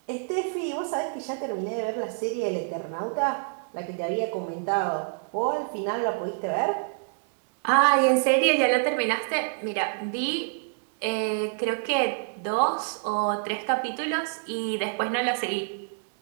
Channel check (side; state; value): left; silent; digital silence